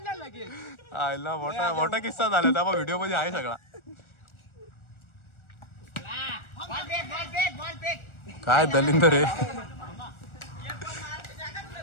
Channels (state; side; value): late; right; 1.4 ms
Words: आयला मोठा किस्सा झाला. त्या व्हिडिओ मध्ये आहे सगळा. काय दलिंदर आहे.